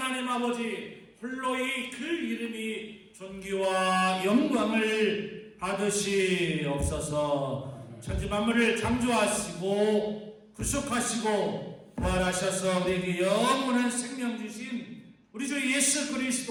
아버지 홀로이 그 이름이 존귀와 영광을 받으시옵소서. 천지 만물을 창조하시고 구속하시고 부활하셔서 우리에게 영원한 생명 주신 우리 주 예수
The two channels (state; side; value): identical; both; correlation 1.00